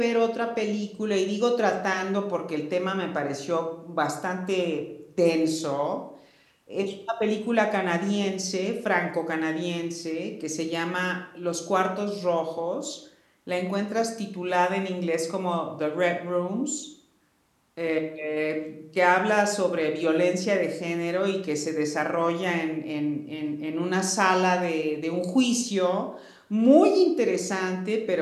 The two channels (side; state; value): both; identical; correlation 1.00